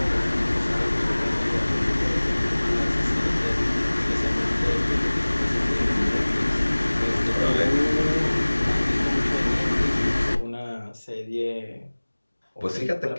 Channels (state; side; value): inverted; both; correlation -1.00